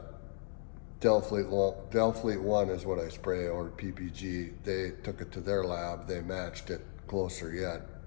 Delfleet 1 is what I spray, or PPG. They took it to their lab. They matched it closer yet,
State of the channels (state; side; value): silent; right; digital silence